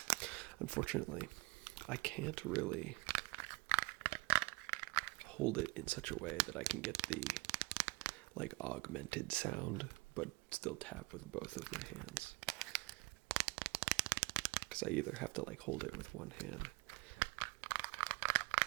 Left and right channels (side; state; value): left; quieter; 25.8 dB